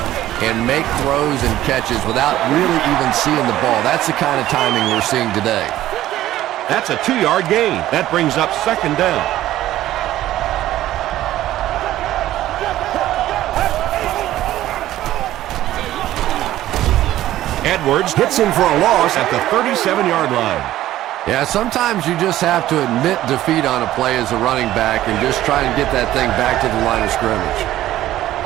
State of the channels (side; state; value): left; quieter; 14.1 dB